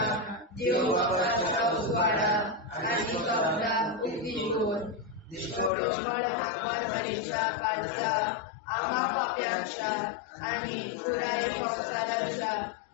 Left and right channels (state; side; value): drops out; right; at 5.7 s